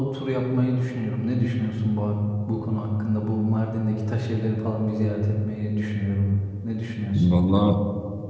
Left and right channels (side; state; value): both; identical; correlation 1.00